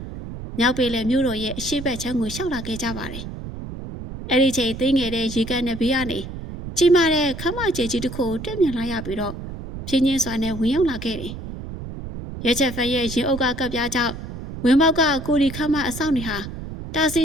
မြောက်ပေလေမြို့တော်ရဲ့အရှိတ်ဘက်ချမ်းကိုရှောက်လာခဲ့ကြပါတယ်။အဲ့ဒီချိန်သိငယ်တဲ့ရေကန်နဲ့ဘေးကနေကြီးမားတဲ့ခမကျဲကြီးတစ်ခုကိုတက်မြင်လာရပြီးတော့ဖြင်းချင်းစွာနဲ့ဝင်ရောက်လာခဲ့တယ်။ရဲချက်ဖက်ရဲ့ရင်အုပ်ကကပ်ပြားကြောင့်ဝင်းပေါက်ကကိုရီခမအဆောင်နေဟာတာစီ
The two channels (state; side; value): noise; right; rumble, 9 dB below the sound